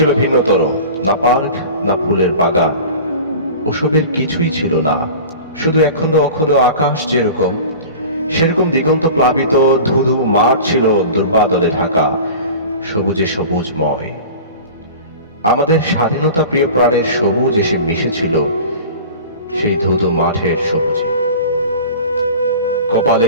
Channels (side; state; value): both; inverted; correlation -0.38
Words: ভিন্নতর, না পার্ক, না ফুলের বাগান, ওসবের কিছুই ছিল না। শুধু একখণ্ড অখণ্ড আকাশ যেরকম, সেরকম দিগন্ত প্লাবিত ধুধু মাঠ ছিল দুর্বাদলে ঢাকা, সবুজে সবুজময়। আমাদের স্বাধীনতা প্রিয় প্রাণের সবুজ এসে মিশেছিল সেই ধুধু মাঠের সবুজে। কপালে